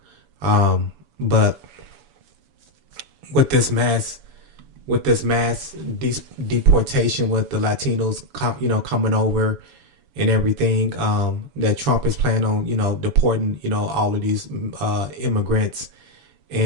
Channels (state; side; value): late; left; 7.0 ms